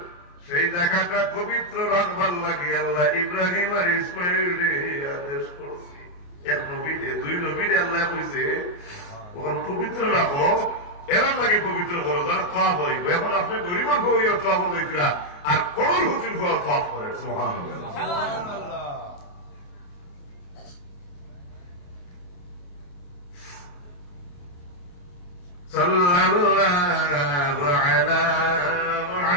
সেই জায়গাটা পবিত্র রাখবার লাগে আল্লাহ ইব্রাহিম আর ইসমাইল রে আদেশ করছি। এক নবীরে 2 নবীরে আল্লাহ কইছে ওখানে পবিত্র রাখো, এরা লাগে পবিত্র করো যারা তওয়াব হইব। এখন আপনি গরিবের হইয়া তওয়াব হইতরা আর করল হুজুর হওয়া তওয়াব করে। সুবহানাল্লাহ সুবহানাল্লাহ। সাল্লাল্লাহু আলা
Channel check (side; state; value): right; late; 28 ms